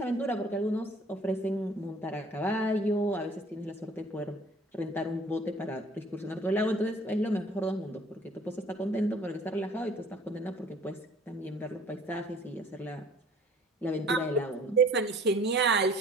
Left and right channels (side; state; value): both; normal; correlation 0.53